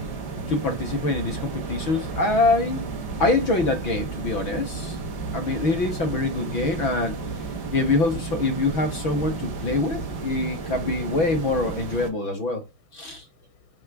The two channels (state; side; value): late; right; 6.1 ms